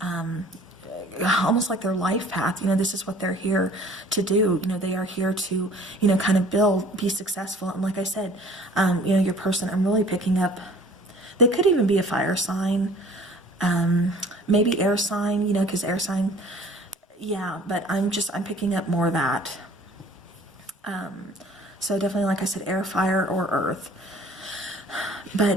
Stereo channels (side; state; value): both; normal; correlation 0.51